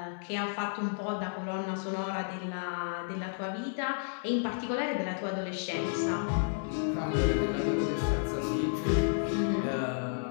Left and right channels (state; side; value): silent; right; digital silence